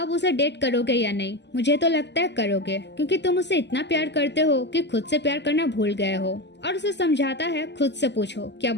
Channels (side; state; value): right; late; 0.50 ms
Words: उसे डेट करोगे या नहीं? मुझे तो लगता है करोगे, क्योंकि तुम उसे इतना प्यार करते हो कि खुद से प्यार करना भूल गए हो। और उसे समझाता है, खुद से पूछो क्या